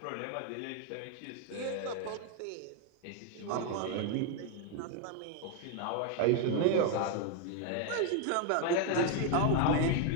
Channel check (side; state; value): both; different; correlation 0.01